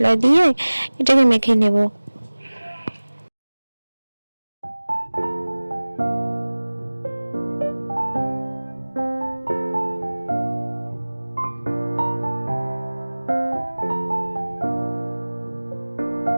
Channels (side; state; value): both; inverted; correlation -1.00